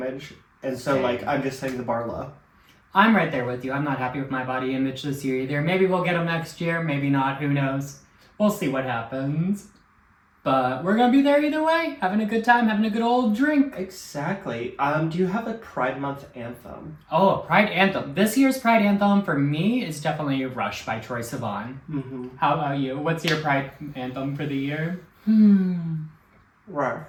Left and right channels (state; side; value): identical; both; correlation 1.00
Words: And so, Same. like, I'm just setting the bar low. I'm right there with you. I'm not happy with my body image this year either. Maybe we'll get them next year. Maybe not. Who knows? We'll see what happens. But we're going to be there either way. Having a good time. Having a good old drink. Exactly. Do you have a Pride Month anthem? Oh, a Pride anthem. This year's Pride anthem for me is definitely Rush by Troye Sivan. Mm-hmm. How about you? What's your Pride anthem for the year? Right.